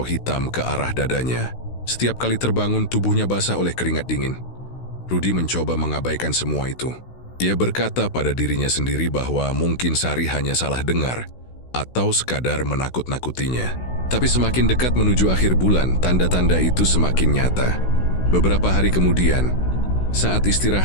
ke arah dadanya. Setiap kali terbangun tubuhnya basah oleh keringat dingin. Rudi mencoba mengabaikan semua itu. Ia berkata pada dirinya sendiri bahwa mungkin Sari hanya salah dengar atau sekadar menakut-nakutinya. Tapi semakin dekat menuju akhir bulan, tanda-tanda itu semakin nyata. Beberapa hari kemudian, saat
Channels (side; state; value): right; late; 16 ms